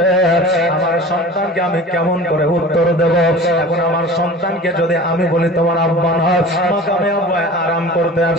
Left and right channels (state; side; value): normal; both; correlation 0.39